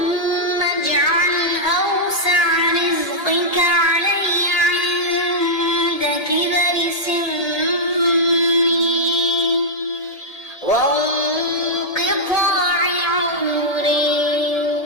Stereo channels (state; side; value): late; right; 1.8 ms